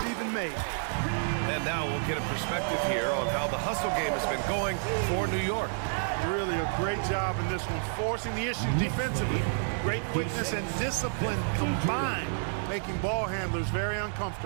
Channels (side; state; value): left; silent; digital silence